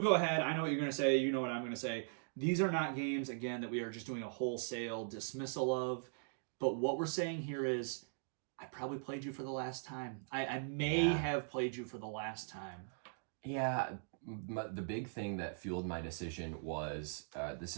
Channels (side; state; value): left; silent; digital silence